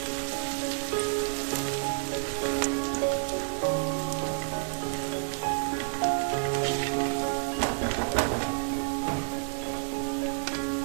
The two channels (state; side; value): silent; left; 58 dB below the other